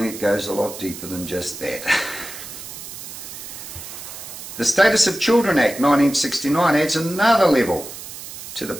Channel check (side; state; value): right; noise; hiss, 11 dB below the sound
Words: it goes a lot deeper than just that. The Status of Children Act 1969 adds another level to the